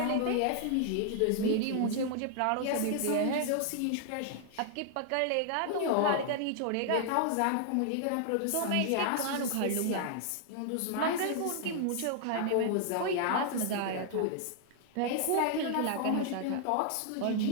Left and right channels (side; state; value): both; different; correlation 0.00